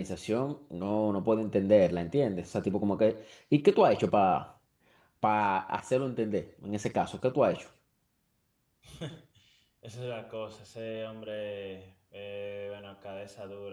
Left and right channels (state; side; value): identical; both; correlation 1.00